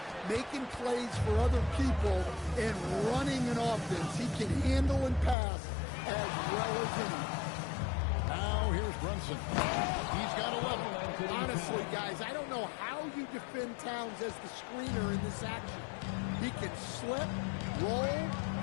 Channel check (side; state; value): right; drops out; at 5.4 s